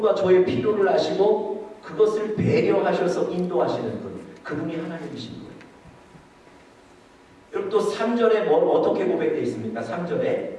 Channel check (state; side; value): identical; both; correlation 1.00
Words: 저의 필요를 아시고 그것을 배려하셔서 인도하시는 분, 그분이 하나님이신 거예요. 여러분, 또 3절에 뭘 어떻게 고백되어 있습니까? 3절에